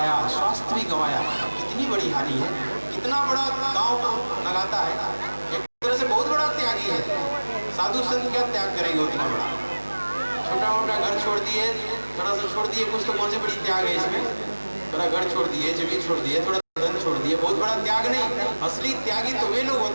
स्वास्थ्य भी गंवाया, कितनी बड़ी हानि है। कितना बड़ा गांव लगाता है, एक तरह से बहुत बड़ा त्यागी है। साधु संत क्या त्याग करेंगे उतना बड़ा, छोटा मोटा घर छोड़ दिए, थोड़ा सा छोड़ दिए, कुछ तो कौन सी बड़ी त्याग है इसमें, थोड़ा घर छोड़ दिए, जमीन छोड़ दिए, थोड़ा धन छोड़ दिए, बहुत बड़ा त्याग नहीं। असली त्यागी तो वे लोग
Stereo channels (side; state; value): both; inverted; correlation -1.00